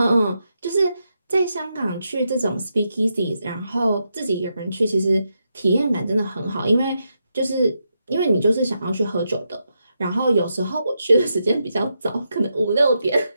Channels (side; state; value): both; inverted; correlation -0.84